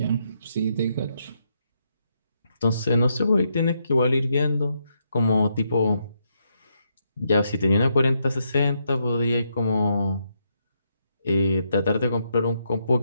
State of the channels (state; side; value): inverted; both; correlation -0.79